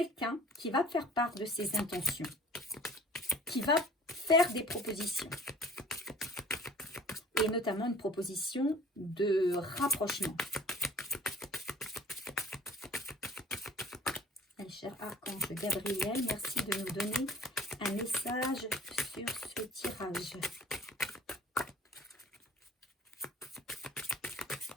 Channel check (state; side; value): normal; both; correlation 0.48